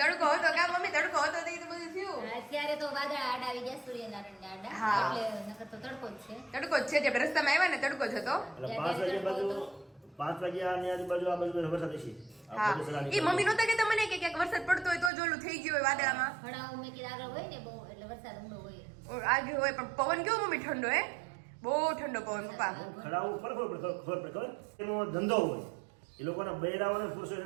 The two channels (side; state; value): left; drops out; at 15.1 s